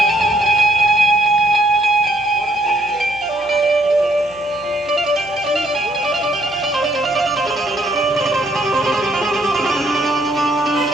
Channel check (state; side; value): noise; right; hum, 26 dB below the sound